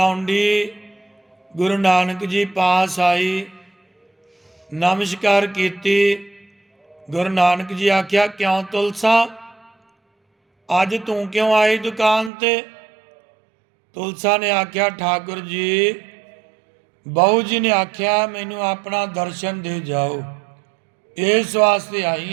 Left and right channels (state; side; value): drops out; left; at 12.3 s